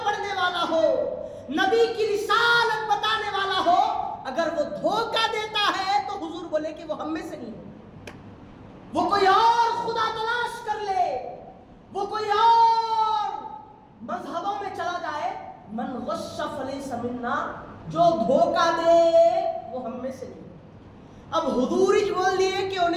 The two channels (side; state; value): both; identical; correlation 1.00